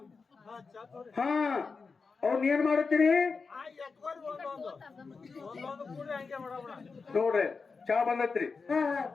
ಹಾ ಅವ್ನ ಏನ್ ಮಾಡುತ್ತೀರಿ ನೋಡ್ರಿ. ಚಾ ಬಂದತ್ರಿ, ಹಾ ಹಾ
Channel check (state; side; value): quieter; right; 4.7 dB